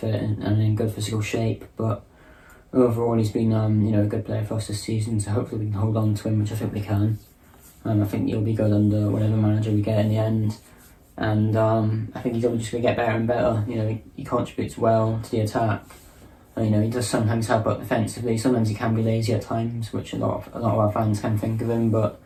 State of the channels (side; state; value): both; identical; correlation 1.00